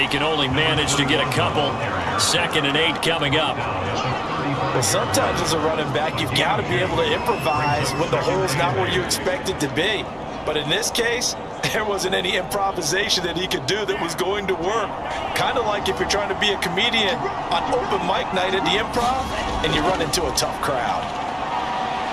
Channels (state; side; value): identical; both; correlation 1.00